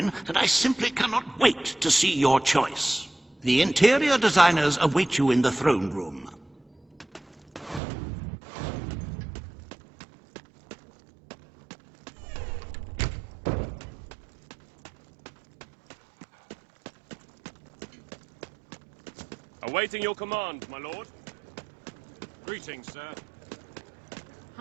and I simply cannot wait to see your choice. The interior designers await you in the throne room. Awaiting your command, my lord. Greetings, sir.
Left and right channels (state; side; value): drops out; left; at 7.8 s